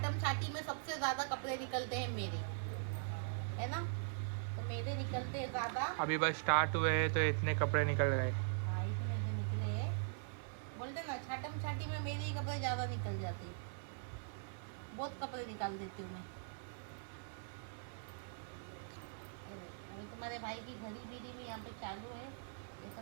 छाटी में सबसे ज्यादा कपड़े निकलते हैं मेरे, है ना। तो मेरे निकलते हैं ज्यादा। अभी बस स्टार्ट हुए हैं तो इतने कपड़े निकल गए। हाँ इतने से निकले हैं। बोलते ना छाटम छाटी में मेरे ही कपड़े ज्यादा निकल जाते हैं। बहुत कपड़े निकाल देती हूँ मैं। अभी तुम्हारे भाई की घड़ी बीड़ी भी यहाँ पे चालू है। ये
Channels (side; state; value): left; silent; 50 dB below the other